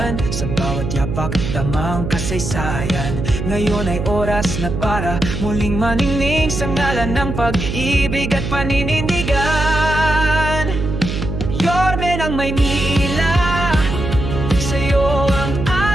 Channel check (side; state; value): right; noise; hum, 4 dB below the sound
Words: sa bawat yapak damang kasaysayan. Ngayon ay oras na para muling maningning sa ngalan ng pag-ibig at paninindigan. Yorme ng Maynila, sa'yo ang